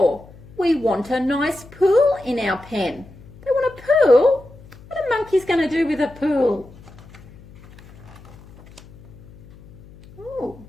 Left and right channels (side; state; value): left; noise; hum, 22 dB below the sound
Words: We want a nice pool in our pen. They want a pool? What are monkeys going to do with a pool? Oh,